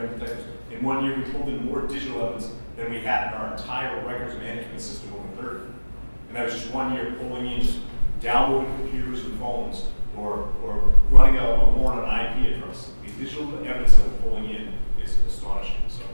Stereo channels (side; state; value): both; inverted; correlation -1.00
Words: in detectives, In 1 year, we pulled in more digital evidence than we had in our entire records management system over 30. And that was just 1 year pulling in, just downloading computers and phones, or running a warrant on an IP address. The digital evidence that we're pulling in is astonishing.